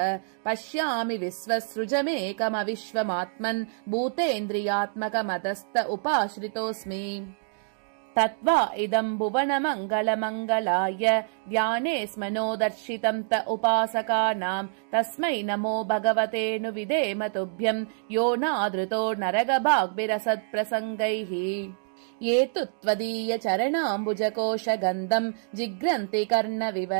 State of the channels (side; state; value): left; silent; digital silence